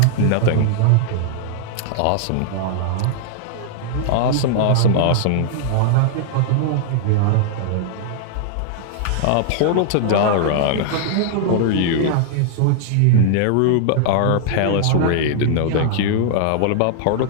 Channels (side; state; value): both; different; correlation -0.01